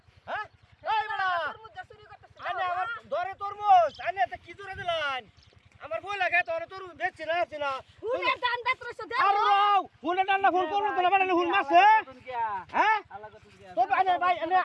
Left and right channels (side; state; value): both; identical; correlation 1.00